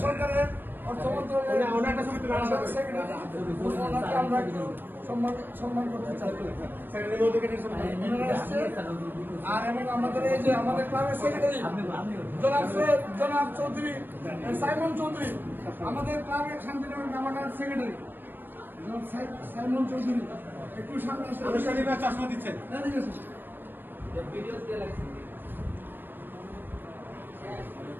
সরকারের অর্থ মন্ত্রণালয়ের সেক্রেটারি, আমরা একটু সম্মান করতে চাই। আর এবং আমাদের এই যে আমাদের ক্লাবের সেক্রেটারি জনাব চৌধুরী সাইমন চৌধুরী, আমাদের ক্লাবের শান্তিনগর নামানার সেক্রেটারি সাইমন চৌধুরী, একটু সামনে চশমা দিচ্ছেন।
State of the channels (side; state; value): left; late; 0.094 ms